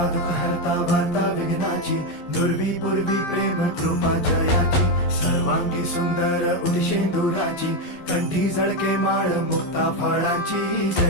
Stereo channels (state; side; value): late; right; 11 ms